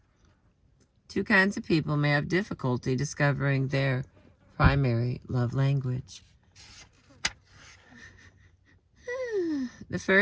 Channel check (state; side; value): identical; both; correlation 1.00